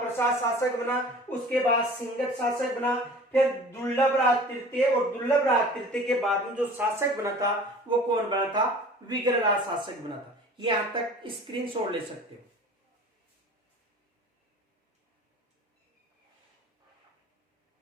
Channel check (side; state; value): both; normal; correlation 0.43